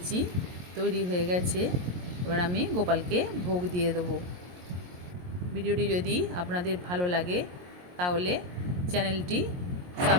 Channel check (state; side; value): late; left; 22 ms